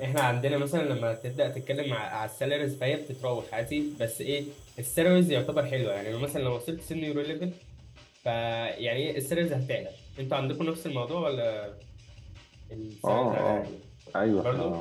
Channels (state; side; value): identical; both; correlation 1.00